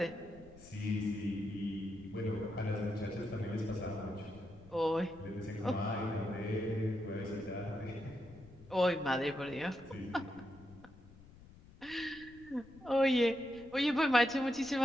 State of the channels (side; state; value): left; noise; rumble, 21 dB below the sound